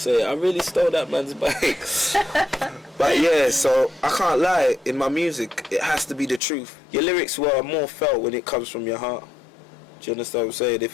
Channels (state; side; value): drops out; right; at 6.4 s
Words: I really stole that man's bike. But yeah, so I can't lie in my music. It has to be the truth. Your lyrics were more felt when it comes from your heart. Do you understand what I'm saying?